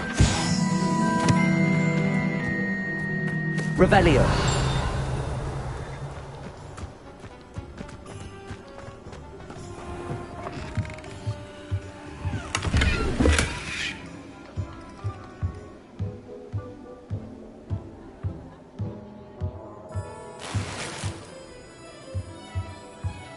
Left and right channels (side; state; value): both; identical; correlation 1.00